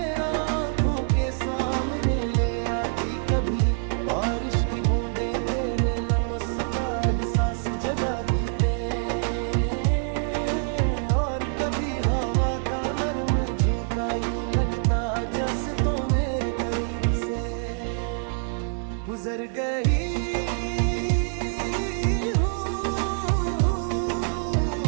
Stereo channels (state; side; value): silent; left; 61 dB below the other